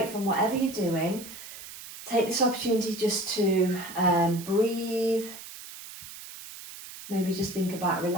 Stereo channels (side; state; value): right; noise; hiss, 14 dB below the sound